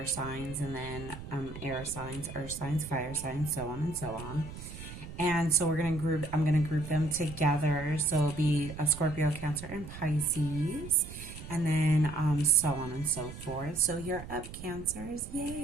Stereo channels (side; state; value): right; noise; rumble, 12 dB below the sound